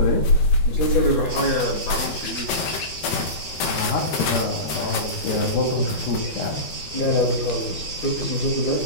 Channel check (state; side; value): late; right; 13 ms